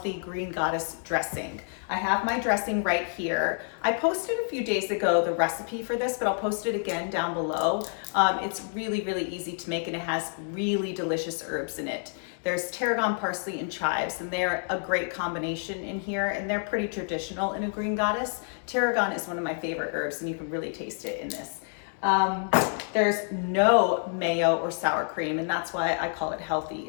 green goddess dressing. I have my dressing right here. I posted a few days ago the recipe for this, but I'll post it again down below. It's really easy to make and it has really delicious herbs in it. There's tarragon, parsley, and chives, and they're a great combination in here, and they're pretty traditional in a green goddess. Tarragon is one of my favorite herbs, and you can really taste it in this. There's no mayo or sour cream, and that's why I call it healthy.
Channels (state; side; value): silent; right; 57 dB below the other